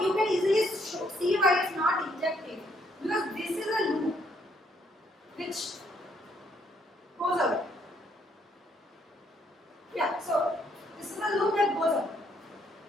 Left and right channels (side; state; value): both; normal; correlation 0.70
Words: you can easily see why it's not injective, because this is a loop which goes away. Yeah, so this is a loop that goes away.